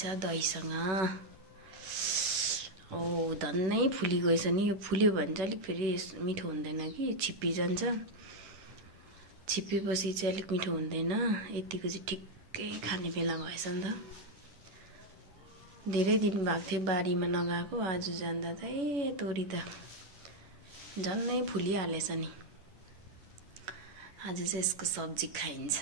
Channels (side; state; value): left; late; 11 ms